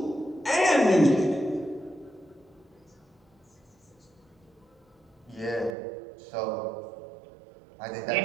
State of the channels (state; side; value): drops out; left; at 5.8 s